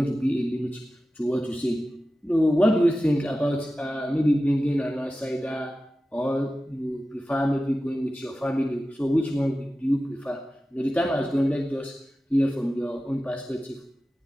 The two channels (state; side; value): normal; both; correlation 0.94